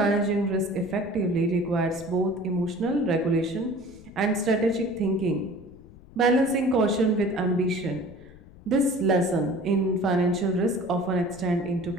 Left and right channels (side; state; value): left; noise; rumble, 21 dB below the sound